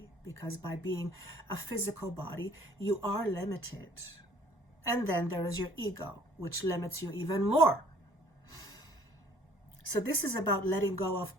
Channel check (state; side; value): normal; both; correlation 0.56